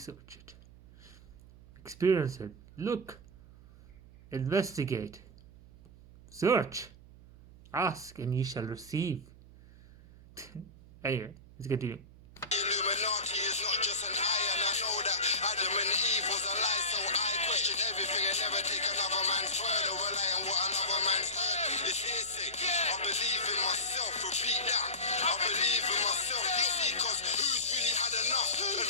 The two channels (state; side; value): noise; right; hum, 21 dB below the sound